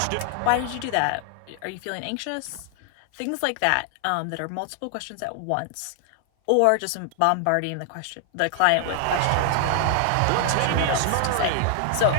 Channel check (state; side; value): different; both; correlation 0.00